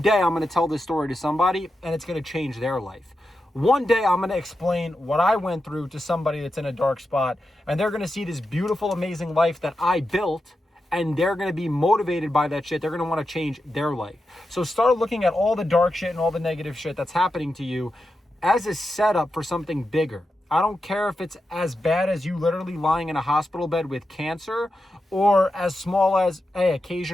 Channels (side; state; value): both; normal; correlation 0.89